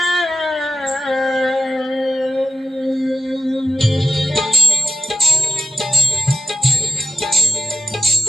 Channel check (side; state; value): both; normal; correlation 0.90